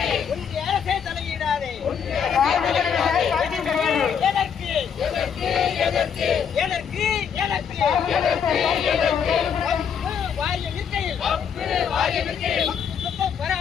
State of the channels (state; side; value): quieter; right; 7.4 dB